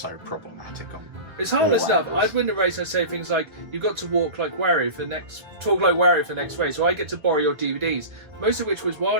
problematic on. It's harmless enough. angles. I'd win the race. I'd say things like, "You got to talk like Wario for the next race," or "I get to borrow your DVDs," most of which was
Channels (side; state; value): left; late; 1.4 ms